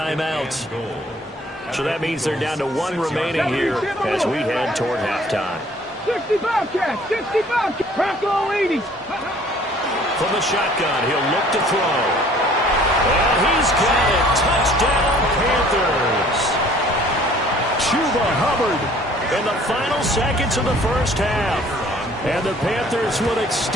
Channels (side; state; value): both; normal; correlation 0.55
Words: So that means they're down to 1 remaining here as we head toward halftime. 60 Bobcats, 60 Bobcats. Bronco 80. From the shotgun, he'll look to throw. And he's got it. Touchdown, Panthers. Chuba Hubbard in the final seconds of the first half. And the Panthers will